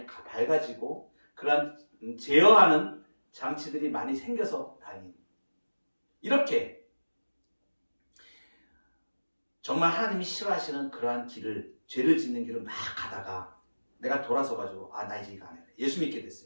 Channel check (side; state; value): both; inverted; correlation -1.00